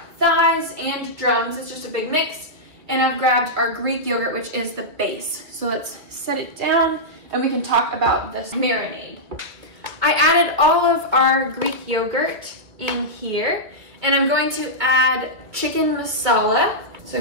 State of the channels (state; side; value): late; left; 2.3 ms